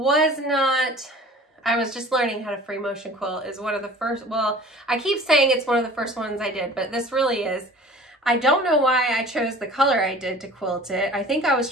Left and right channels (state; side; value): normal; both; correlation 0.45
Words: was just learning how to free motion quilt. Is one of the first, well, I keep saying it's one of the first ones I did, but this really is. I don't know why I chose the color I did to quilt it. I think I was